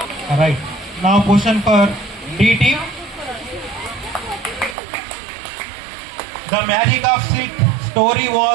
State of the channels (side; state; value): left; drops out; at 4.8 s